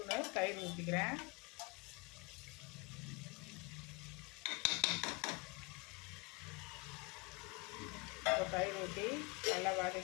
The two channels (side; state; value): right; quieter; 28.3 dB